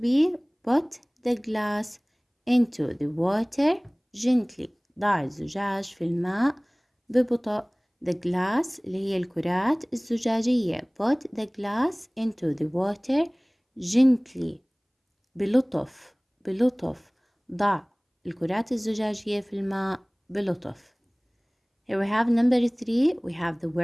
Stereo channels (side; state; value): both; identical; correlation 1.00